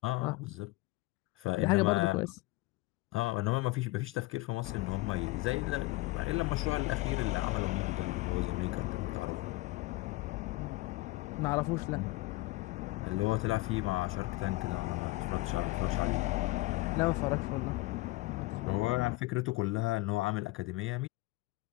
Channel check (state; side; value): quieter; right; 20.7 dB